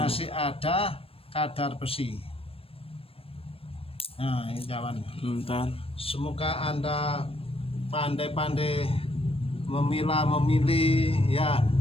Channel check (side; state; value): right; late; 0.28 ms